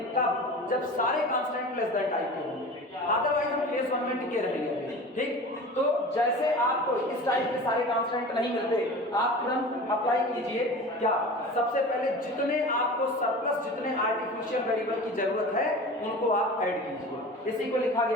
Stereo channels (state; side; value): normal; both; correlation 0.36